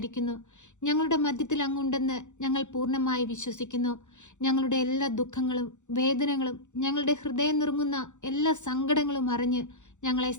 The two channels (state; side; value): late; right; 0.85 ms